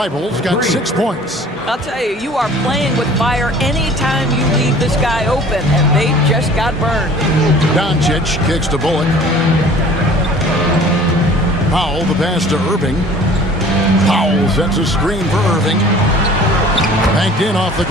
got 6 points. I'll tell you, you are playing with fire anytime you leave this guy open, and they just got burned. Doncic kicks to Bullock. Powell, the pass to Irving. Powell sets a screen for Irving. Banked in off the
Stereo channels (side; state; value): both; normal; correlation 0.48